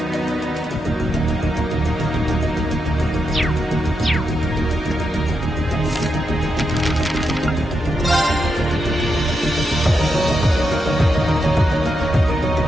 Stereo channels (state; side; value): normal; both; correlation 0.84